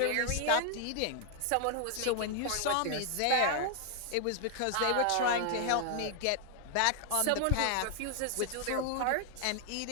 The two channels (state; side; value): different; both; correlation 0.00